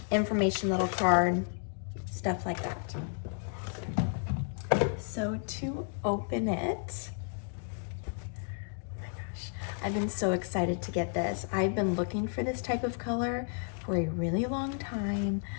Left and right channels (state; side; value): silent; right; 56 dB below the other